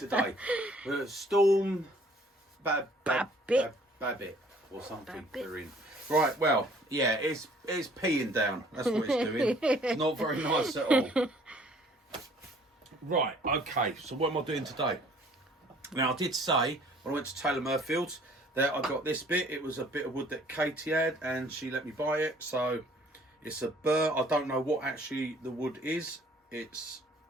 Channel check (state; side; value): normal; both; correlation 0.57